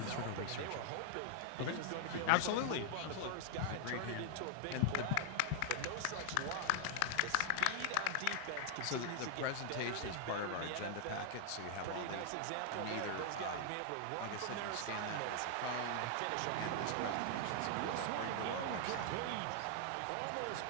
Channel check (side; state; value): both; different; correlation 0.00